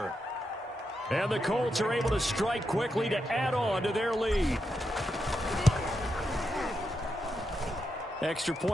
And the Colts are able to strike quickly to add on to their lead. Extra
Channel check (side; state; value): both; normal; correlation 0.85